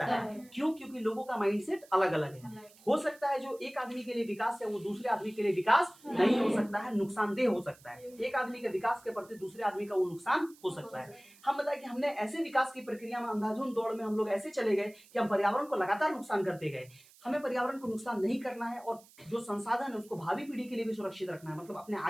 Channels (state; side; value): noise; right; hiss, 25 dB below the sound